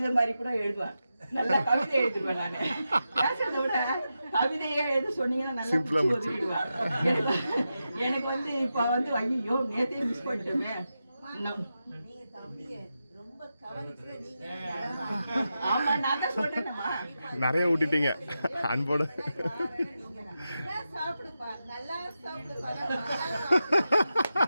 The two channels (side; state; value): both; inverted; correlation -0.89